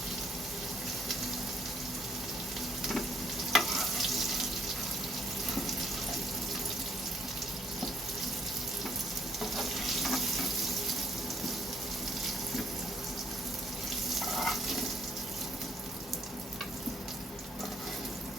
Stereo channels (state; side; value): normal; both; correlation 0.67